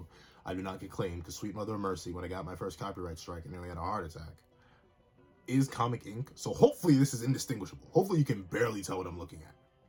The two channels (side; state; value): both; identical; correlation 1.00